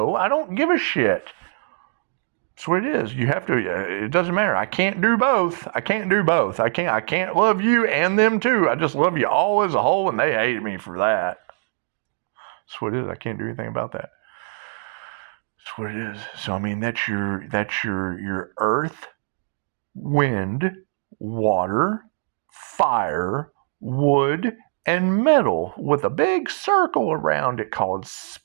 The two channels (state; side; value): silent; left; digital silence